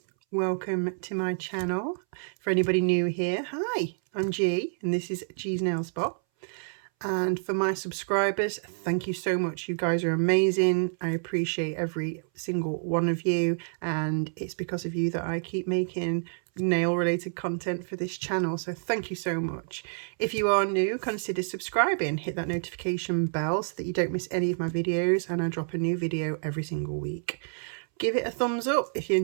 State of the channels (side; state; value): left; silent; 59 dB below the other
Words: Welcome to my channel. For anybody new here, hi, I'm G and this is G's Nail Spot. And for my subscribers, thank you so much. You guys are amazing. I appreciate every single one of you, and it's because of you that I keep making nail related content for this channel, so thank you so much. If you are new, consider subscribing, hit that notification bell so that you don't miss any of my videos, and I drop a new video every single week. Give it a thumbs up if you